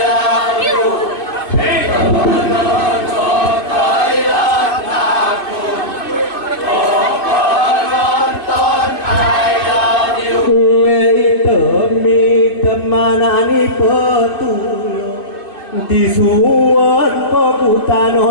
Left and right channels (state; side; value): late; right; 2.5 ms